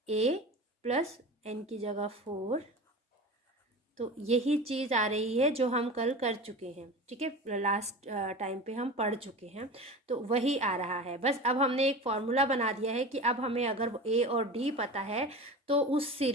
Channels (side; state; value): both; normal; correlation 0.32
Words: A प्लस n की जगह 4. तो यही चीज़ आ रही है जो हम कल कर चुके हैं, ठीक है, लास्ट टाइम पे हम पढ़ चुके हैं. तो वही आ रहा है. बस अब हमने एक फॉर्मूला बना दिया है कि अब हमें अगर ए और डी पता है तो उस